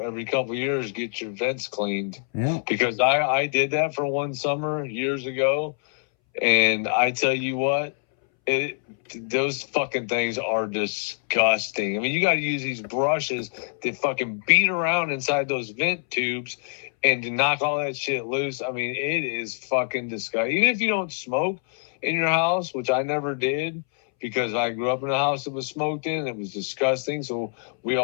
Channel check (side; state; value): right; silent; 62 dB below the other